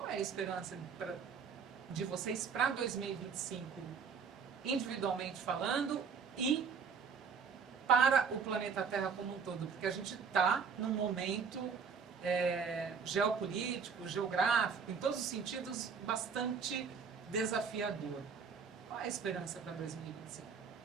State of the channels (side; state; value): left; quieter; 6.0 dB